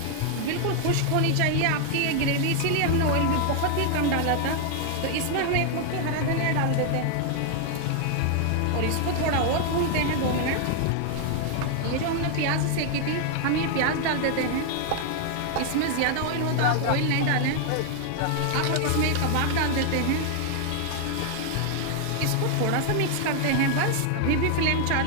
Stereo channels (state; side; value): different; both; correlation 0.00